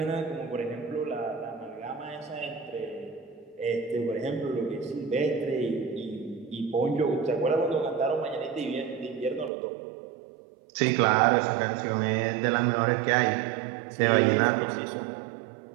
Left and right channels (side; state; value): left; drops out; at 9.5 s